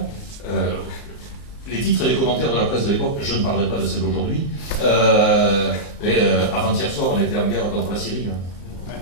les titres et les commentaires de la presse de l'époque, je ne parlerai pas de celle d'aujourd'hui, avant-hier soir, on était en guerre contre la Syrie.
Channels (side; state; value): right; late; 34 ms